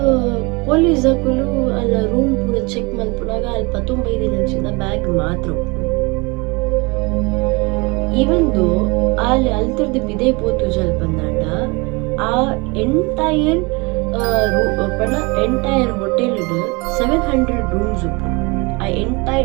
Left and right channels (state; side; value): quieter; left; 27.1 dB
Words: ಪೊಲೀಸ್ ಹಾಕಲು ಅಲ್ಲ ರೂಮ್ ಪೂರ ಚೆಕ್ ಮಲ್ಪುನಾಗ ಅಲ್ಲಿ 15 ದಿನಂಚಿಂದ ಬ್ಯಾಗ್ ಮಾತ್ರ ಇವಂದು ಅಲ್ಲಿ ಅಲ್ತರ್ದು ಬಿದೆ ಪೋತು ಜಲ್ ಬಂದಾಂಡ ಆ ಎಂಟೈರ್ ಹೋಟೆಲ್ 700 ರೂಮ್ಸ್ ಉಪ್ಪು ಆ